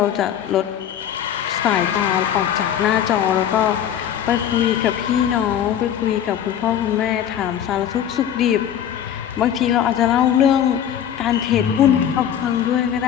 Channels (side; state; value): right; quieter; 9.8 dB